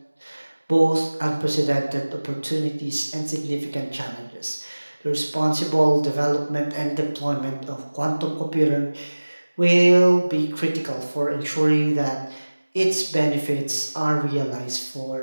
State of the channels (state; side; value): inverted; both; correlation -1.00